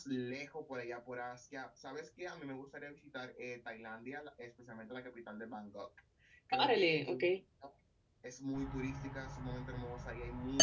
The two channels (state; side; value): identical; both; correlation 1.00